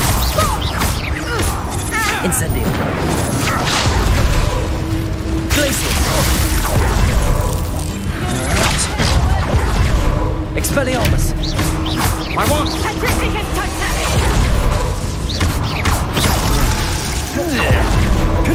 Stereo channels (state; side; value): identical; both; correlation 1.00